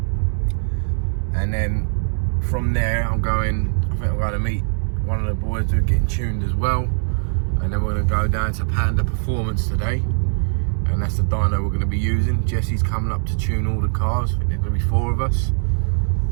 and then from there I think I'm going to meet one of the boys who are getting tuned as well, and then we're going to go down to Panda Performance today, and that's the dyno we're going to be using. Jesse's coming up to tune all the cars. I think there's going to be 4 of us,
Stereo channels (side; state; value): left; silent; digital silence